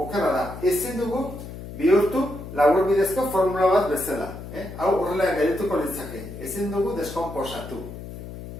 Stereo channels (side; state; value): left; noise; hum, 11 dB below the sound